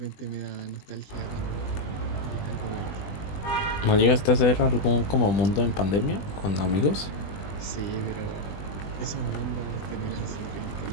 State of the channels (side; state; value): right; late; 20 ms